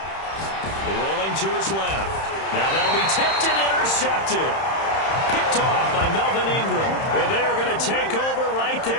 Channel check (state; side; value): late; right; 31 ms